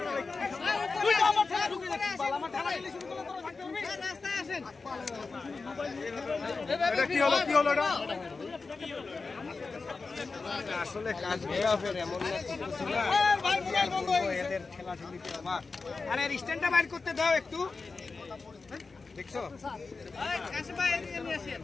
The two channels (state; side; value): quieter; right; 4.2 dB